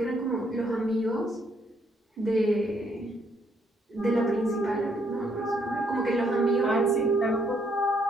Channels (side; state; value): both; normal; correlation 0.71